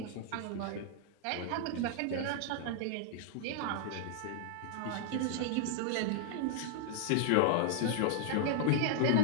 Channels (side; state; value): both; different; correlation -0.01